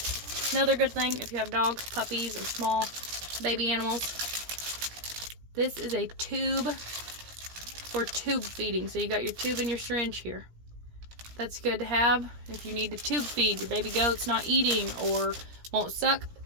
another good thing if you have dogs, puppies, or small baby animals. This is a tube for tube feeding. So you got your tube and your syringe here. That's good to have if you need to tube feed your baby goat's not eating or won't suck.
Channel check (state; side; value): late; left; 17 ms